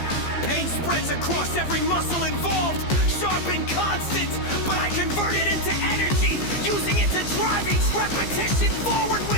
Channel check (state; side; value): late; right; 15 ms